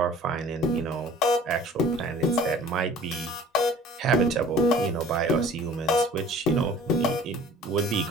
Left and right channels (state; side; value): normal; both; correlation 0.48